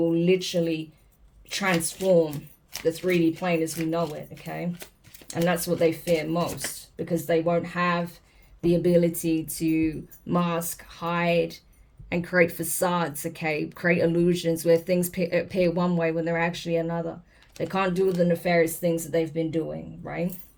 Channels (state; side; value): identical; both; correlation 1.00